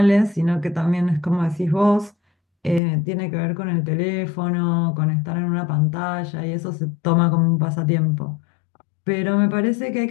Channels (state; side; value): drops out; right; at 2.8 s